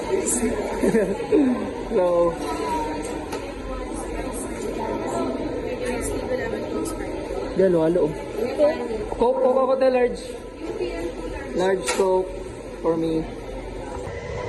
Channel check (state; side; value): identical; both; correlation 1.00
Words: So, halo. Coke Coca-Cola large. Large Coke for me.